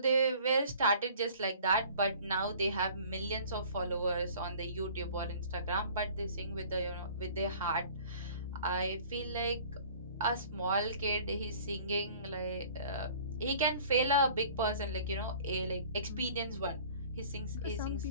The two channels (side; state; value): both; inverted; correlation -0.49